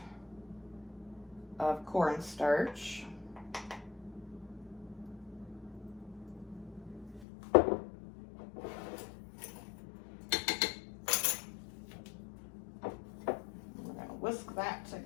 of cornstarch. We're gonna whisk that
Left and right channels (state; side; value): drops out; right; at 7.2 s